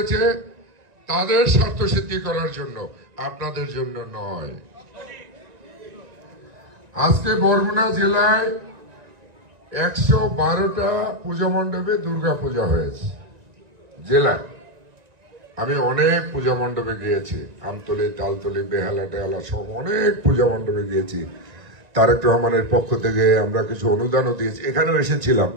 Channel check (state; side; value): late; left; 1.9 ms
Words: তাদের স্বার্থ সিদ্ধি করার জন্য, আপনাদের জন্য নয়। আজকে বরগুনা জেলায় 112টা পূজা মণ্ডপে দুর্গা পূজা হয়েছে জেলায়। আমি অনেক পূজা মণ্ডপে গিয়েছি, আমতলী, তালতলী, বেহালা টেহালা সব অনেক পূজা মণ্ডপে গিয়েছি। তারেক রহমানের পক্ষ থেকে আমরা কিছু অনুদানও দিয়েছি। এখানেও এসেছিলাম